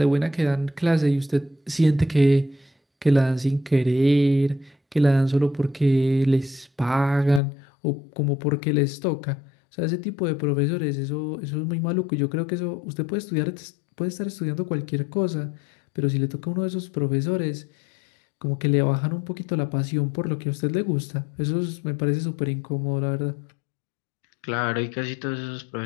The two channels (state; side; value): drops out; right; at 7.4 s